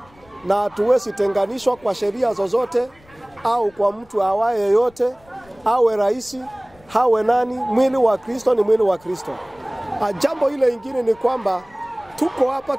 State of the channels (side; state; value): left; noise; rumble, 28 dB below the sound